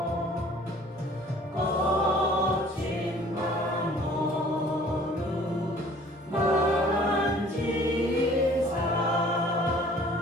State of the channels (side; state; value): both; normal; correlation 0.52